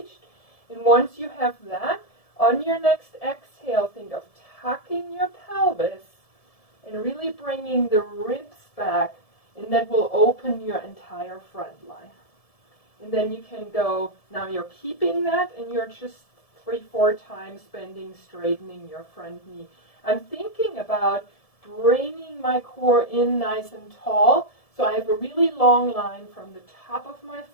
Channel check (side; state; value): right; late; 1.7 ms